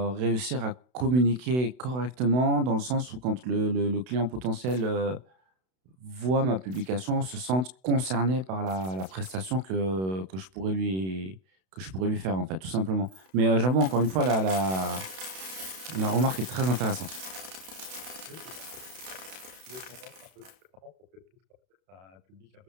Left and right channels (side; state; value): left; late; 32 ms